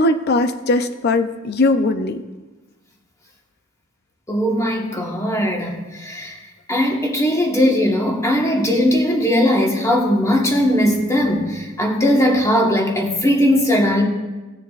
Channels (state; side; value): normal; both; correlation 0.65